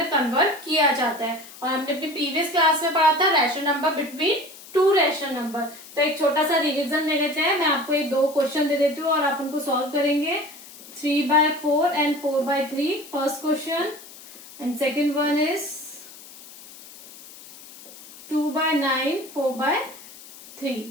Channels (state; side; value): noise; left; hiss, 18 dB below the sound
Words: कन्वर्ट किया जाता है। और हमने अपनी प्रीवियस क्लास में पढ़ा था rational number between two rational number. तो एक छोटा सा रिविजन ले लेते हैं। मैं आपको एक दो क्वेश्चन दे देती हूँ और आप उनको सॉल्व करेंगे। 3/4 and 4/3 first question and second one is 2/9, 4/3.